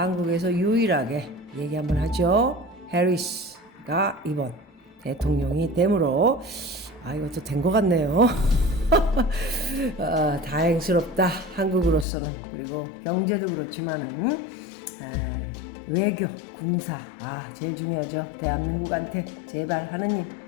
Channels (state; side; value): drops out; right; at 12.1 s